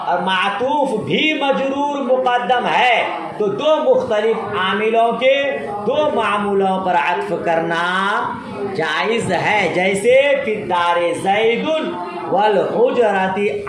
اور معطوف بھی مجرور مقدم ہے، تو دو مختلف عاملوں کے دو معمولوں پر عطف کرنا جائز ہے، جیسے فی الدار زید والحجرۃ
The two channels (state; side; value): identical; both; correlation 1.00